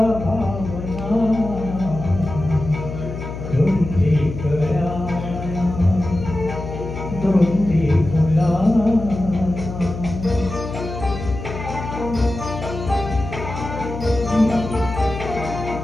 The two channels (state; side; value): noise; left; hum, 8 dB below the sound